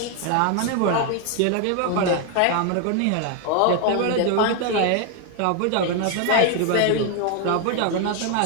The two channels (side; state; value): both; different; correlation 0.01